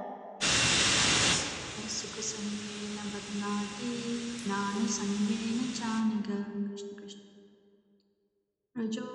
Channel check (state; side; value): identical; both; correlation 1.00